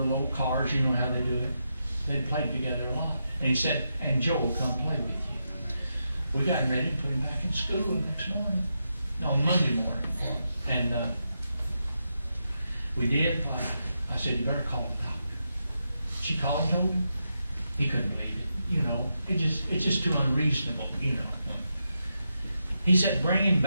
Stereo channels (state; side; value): inverted; both; correlation -0.85